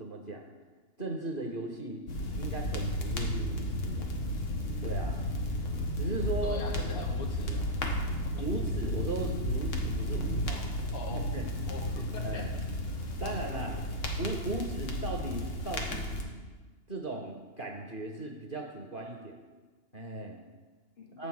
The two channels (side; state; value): right; late; 2.8 ms